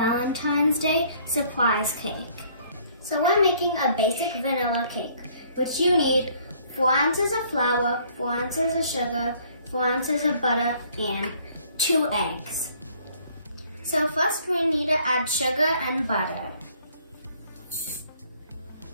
Day surprise cake. So we're making a basic vanilla cake, which you need 4 ounces of flour, 4 ounces of sugar, 4 ounces of butter, and 2 eggs. So first we need to add sugar and butter.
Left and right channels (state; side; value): inverted; both; correlation -0.60